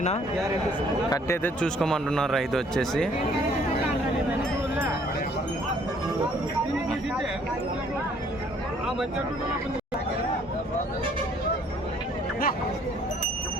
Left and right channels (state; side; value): normal; both; correlation 0.61